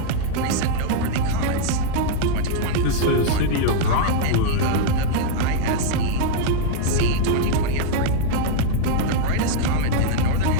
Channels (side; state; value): both; different; correlation 0.00